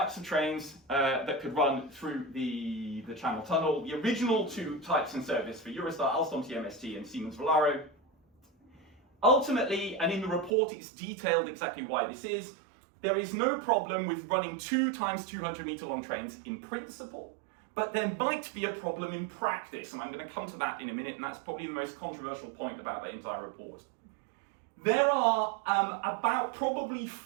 of trains that could run through the Channel Tunnel, the original two types in service for Eurostar, Alstom TMST and Siemens Velaro. Ultimately, and in the report it's detailed exactly why this is, there is no problem with running 2 times 200-metre long trains in principle, but there might be a problem in practice, and I'm going to come to that in a minute, and that's probably the most controversial point about the entire report. There are about probably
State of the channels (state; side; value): drops out; left; at 10.5 s